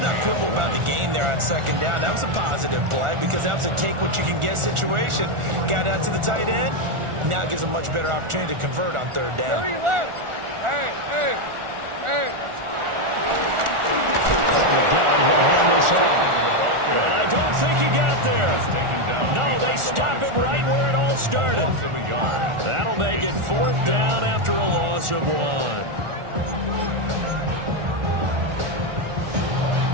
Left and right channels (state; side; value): late; left; 1.4 ms